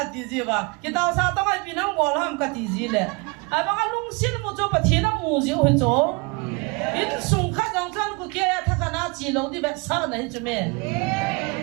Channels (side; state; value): left; quieter; 28.9 dB